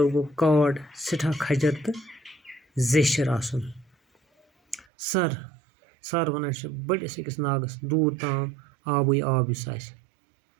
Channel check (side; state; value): left; drops out; at 4.9 s